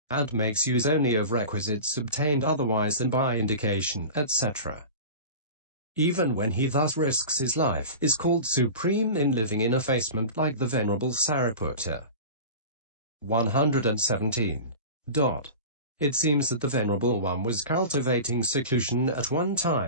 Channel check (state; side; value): inverted; both; correlation -0.32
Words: and makes use only of requisites obtained otherwise than by indication, etc., even when he thus risks his life, is called supreme in living in effacement like the Venerable Sariputta. 117. It seems that the Venerable One was cultivating seclusion at one